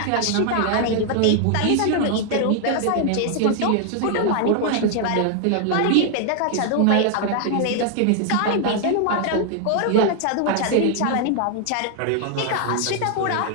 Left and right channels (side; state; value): both; different; correlation 0.00